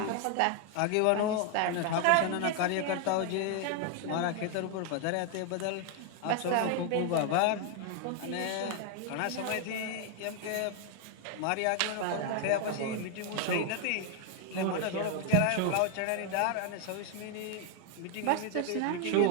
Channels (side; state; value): both; different; correlation 0.00